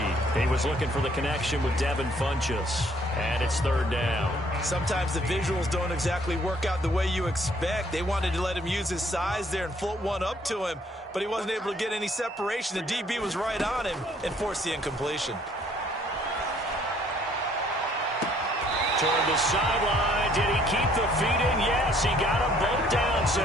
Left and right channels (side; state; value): both; normal; correlation 0.62